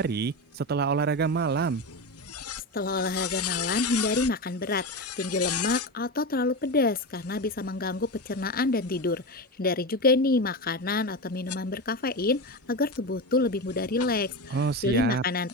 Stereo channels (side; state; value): both; normal; correlation 0.19